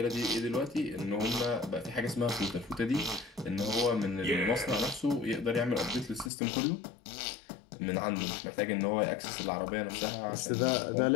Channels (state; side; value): drops out; right; at 6.3 s